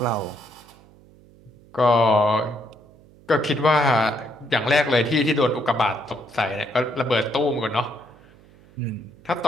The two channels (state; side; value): noise; right; hum, 26 dB below the sound